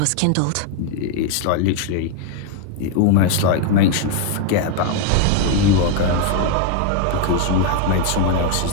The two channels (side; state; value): both; different; correlation 0.01